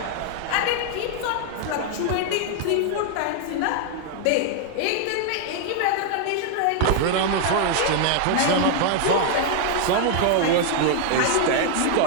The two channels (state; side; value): different; both; correlation 0.00